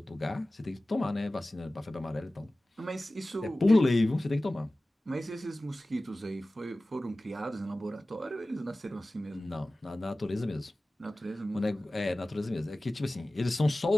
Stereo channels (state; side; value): normal; both; correlation 0.96